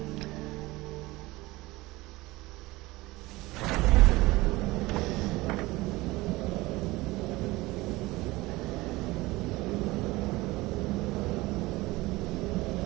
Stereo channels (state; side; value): quieter; left; 20.4 dB